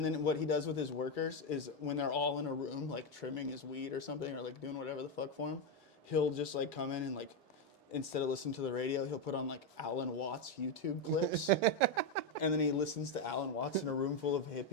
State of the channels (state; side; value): normal; both; correlation 0.06